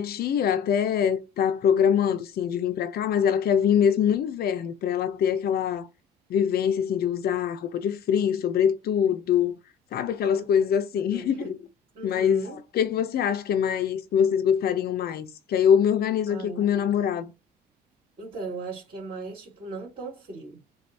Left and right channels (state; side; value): quieter; right; 7.8 dB